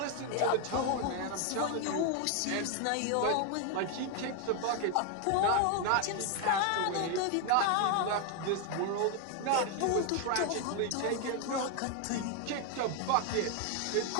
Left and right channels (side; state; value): both; different; correlation 0.01